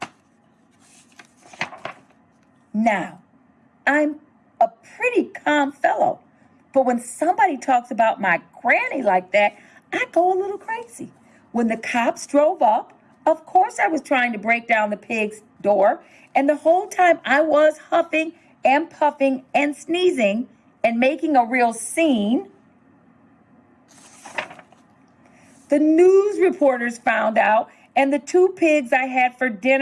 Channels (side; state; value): both; identical; correlation 1.00